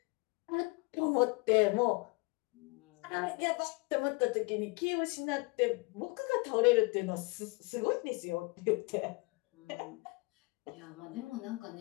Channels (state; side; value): quieter; right; 27.2 dB